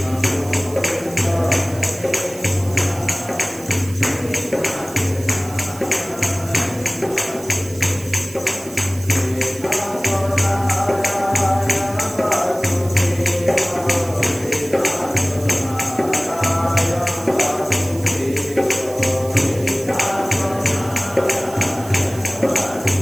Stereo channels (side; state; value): right; noise; hiss, 17 dB below the sound